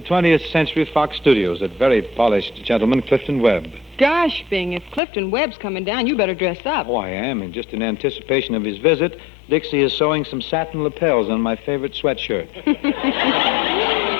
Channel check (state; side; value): drops out; right; at 5.0 s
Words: 20th Century Fox Studios, that very polished gentleman, Clifton Webb. Gosh, Bing, if Clifton Webb's coming down, you better dress up. Oh, I am, and just in anticipation of his visit, Dixie is sewing some satin lapels on my favorite sweatshirt.